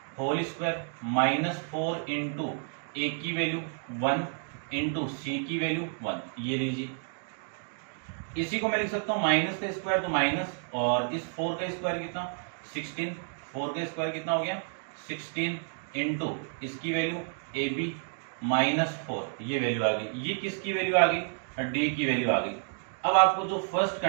होल स्क्वायर, -4 इंटू ए की वैल्यू 1 इंटू सी की वैल्यू 1, ये लीजिए। इसी को मैं लिख सकता हूँ माइनस का स्क्वायर तो माइनस, और इस 4 का स्क्वायर कितना 16, 4 का स्क्वायर कितना हो गया 16 इंटू इसकी वैल्यू ए बी -4, ये वैल्यू आ गई। ये किसकी वैल्यू आ गई, डी की वैल्यू आ गई। अब आपको जो फर्स्ट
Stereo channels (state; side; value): silent; left; 58 dB below the other